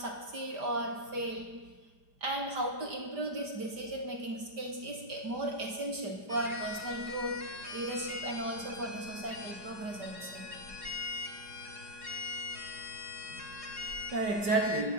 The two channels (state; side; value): late; left; 5.0 ms